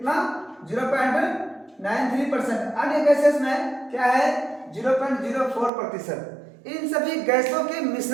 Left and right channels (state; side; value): drops out; left; at 5.7 s